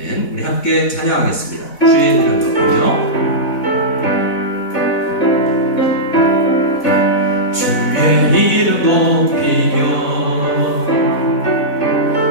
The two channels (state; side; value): late; right; 4.1 ms